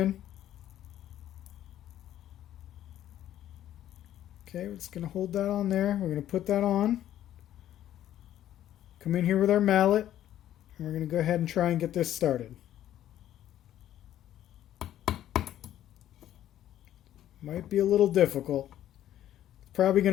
Okay, we're just going to hold that on there. We're going to put that on. Come in here with our mallet, and we're going to go ahead and try and get this started. Might be a little difficult. It's probably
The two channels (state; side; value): quieter; right; 12.0 dB